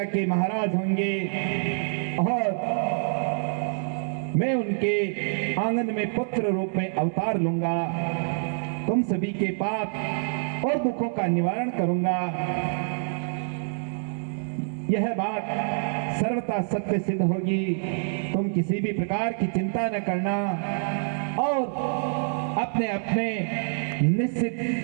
के महाराज होंगे और मैं उनके आंगन में पुत्र रूप में अवतार लूंगा। तुम सभी के पाप और दुखों का निवारण करूंगा। यह बात सर्वथा सत्य सिद्ध होगी। तुम किसी भी प्रकार की चिंता न करना और अपने अपने निश्चित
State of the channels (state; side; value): silent; left; 61 dB below the other